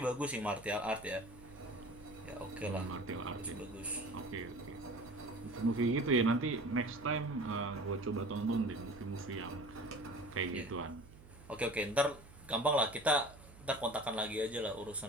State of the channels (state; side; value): noise; right; hum, 20 dB below the sound